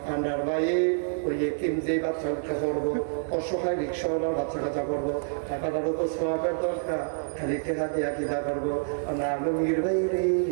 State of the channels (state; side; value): silent; left; 60 dB below the other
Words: আন্ডার বাইয়ে ওই এতিম যেই বাচ্চা উঠে করবো, অসহায় রিক্সাওয়ালার বাচ্চা কাচ্চা করবো, টাকাটার উপর সোয়াবের দরকার, খালি টেকা দিয়া কিনা করবো। আমরা আলমগীর ভাই রে